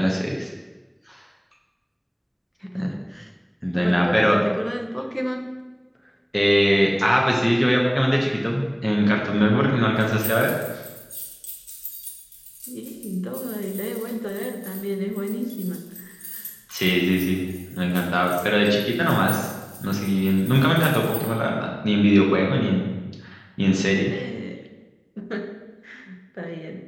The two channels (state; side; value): identical; both; correlation 1.00